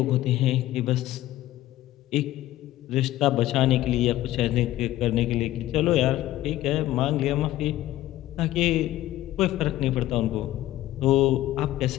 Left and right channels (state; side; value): quieter; right; 15.0 dB